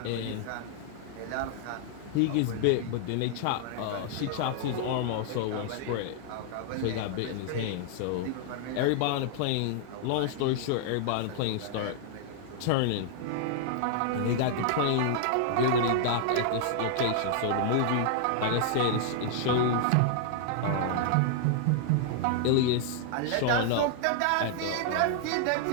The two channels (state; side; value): different; both; correlation -0.01